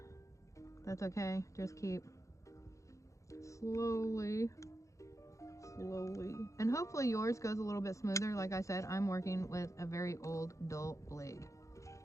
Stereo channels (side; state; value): right; late; 0.15 ms